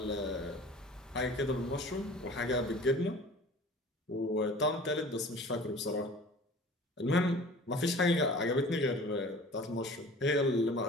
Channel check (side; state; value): both; normal; correlation 0.44